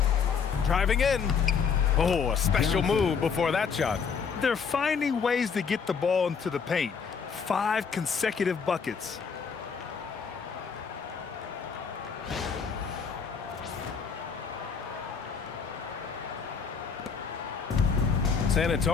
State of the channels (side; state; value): right; quieter; 6.1 dB